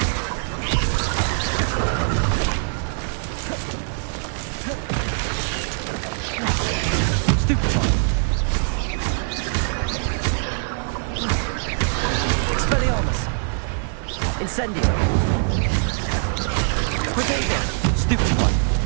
Stupefy! Expelliarmus! Incendio! Protego! Stupefy!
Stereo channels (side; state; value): left; silent; digital silence